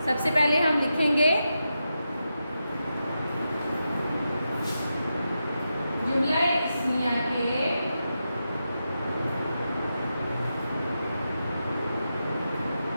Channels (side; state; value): both; inverted; correlation -0.88